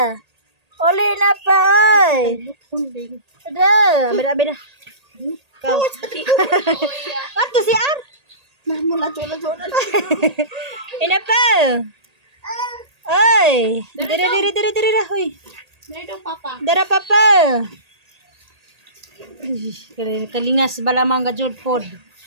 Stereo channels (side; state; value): left; late; 1.8 ms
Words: Uli na pa, oy. Ada, abida. Kau. Ato si Ar. Ina pa. Oy. Diri dah, hoy. Dara papa. Kalingas balamang gajud pod.